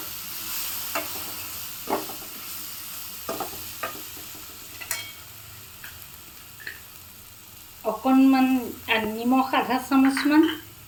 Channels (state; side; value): identical; both; correlation 1.00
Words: অকণমান নিমখ আধা চামুচমান,